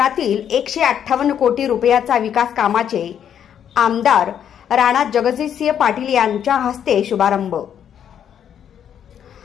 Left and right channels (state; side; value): quieter; right; 9.1 dB